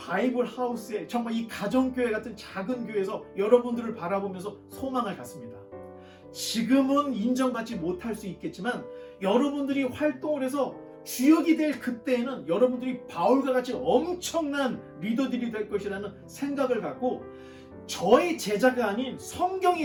하우스에, 정말 이 가정교회 같은 작은 교회에서 여러분들을 바라보면서 소망을 갖습니다. 지금은 인정받지 못할 수 있겠지만 여러분들이 활동을 해서 주역이 될 그때에는 여러분들이 바울과 같이 엄청난 리더들이 될 것이라는 생각을 갖고, 저의 제자가 아닌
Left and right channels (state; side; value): identical; both; correlation 1.00